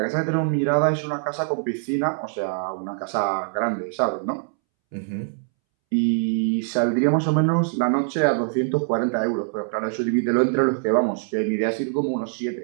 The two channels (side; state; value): left; silent; 63 dB below the other